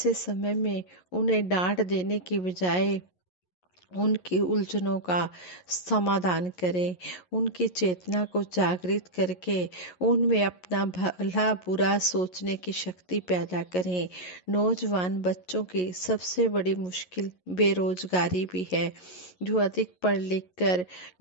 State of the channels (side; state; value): right; late; 11 ms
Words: समय में उन्हें डांट देने की बजाय उनकी उलझनों का समाधान करें। उनकी चेतना को जागृत करके उनमें अपना भला बुरा सोचने की शक्ति पैदा करें। नौजवान बच्चों की सबसे बड़ी मुश्किल बेरोजगारी भी है। जो अधिक पढ़ लिख कर